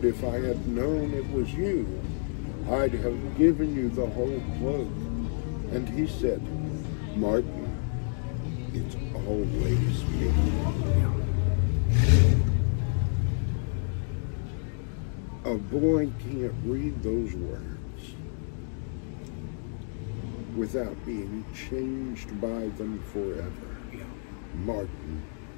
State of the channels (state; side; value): silent; right; 58 dB below the other